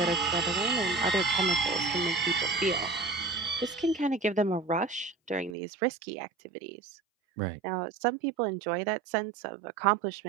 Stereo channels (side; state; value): left; drops out; at 5.6 s